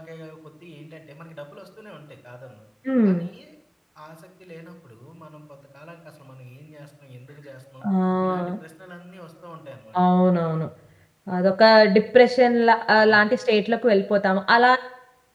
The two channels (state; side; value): identical; both; correlation 1.00